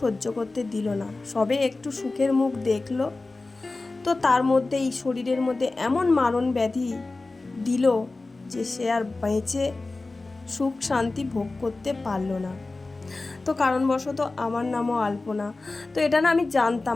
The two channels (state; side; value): quieter; right; 3.4 dB